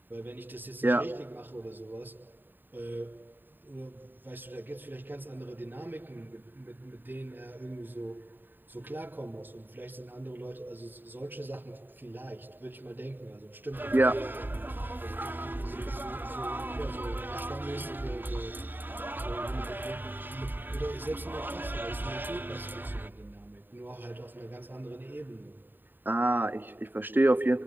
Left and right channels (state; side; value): late; left; 0.092 ms